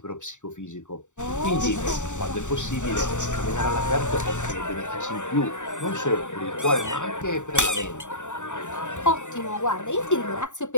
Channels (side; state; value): right; late; 0.85 ms